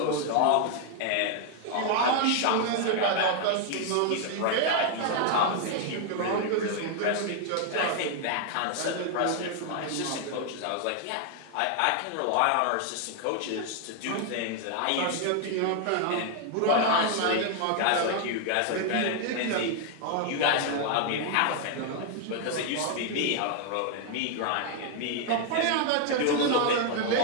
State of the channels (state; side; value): different; both; correlation 0.00